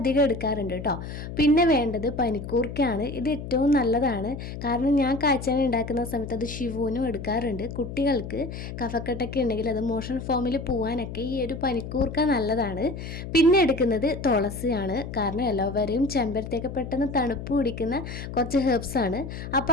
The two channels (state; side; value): noise; left; hum, 9 dB below the sound